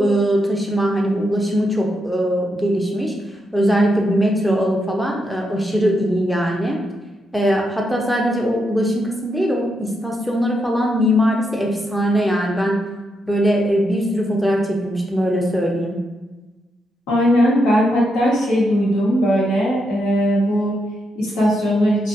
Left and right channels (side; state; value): both; normal; correlation 0.82